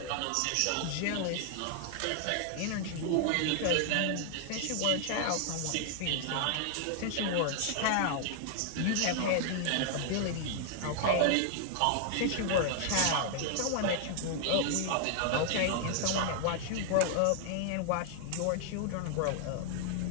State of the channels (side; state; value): both; different; correlation 0.00